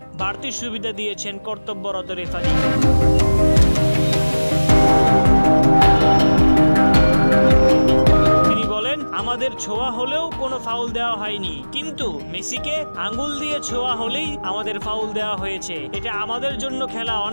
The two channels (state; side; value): inverted; both; correlation -1.00